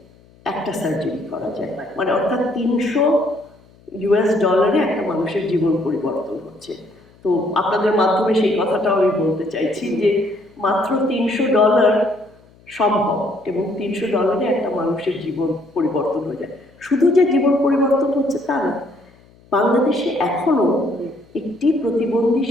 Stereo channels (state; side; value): noise; left; hum, 28 dB below the sound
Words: একটা সার্জারি করা যায়, মানে অর্থাৎ $300 একটা মানুষের জীবন পরিবর্তন হচ্ছে। তো আপনাদের মাধ্যমে সেই কথাটাও আমি বলতে চাইছি যে মাত্র $300 সম্ভব, এবং $300 একটা মানুষের জীবন পরিবর্তন হয়ে যায়। শুধু যে জীবন পরিবর্তন হচ্ছে তা না, বাংলাদেশে এখনো একটি প্রতিবন্ধী